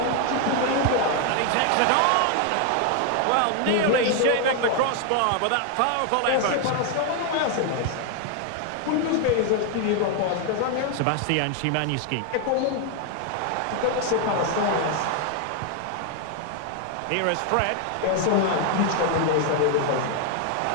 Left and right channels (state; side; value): different; both; correlation 0.00